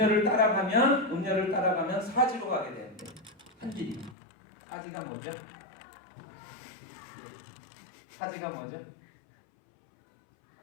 따라가면 사지로 가게 되는데 한 길이. 사지가 뭐죠? 사지가 뭐죠?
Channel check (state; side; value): drops out; right; at 4.2 s